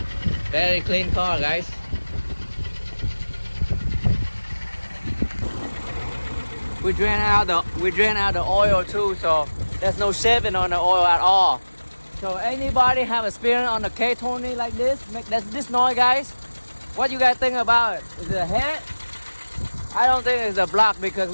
Very clean car, guys. We drain out the oil too, so there's no shaving on the oil at all. So anybody have experience on the K20 like this, make this noise, guys? What you guys think about it? Is it a head? I don't think it's a block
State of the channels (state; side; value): inverted; both; correlation -1.00